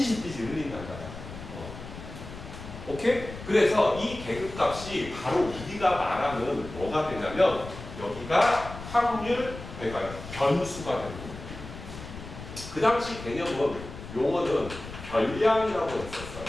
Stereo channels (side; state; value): left; noise; rumble, 12 dB below the sound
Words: 흘린단다. 오케이? 그래서 이 계급값이 바로 우리가 말하는 뭐가 되냐면 여기가 확률, 그러니까 변수가 되는 거예요. 그 당시 개념은 용어는 별량이라고 했었어요.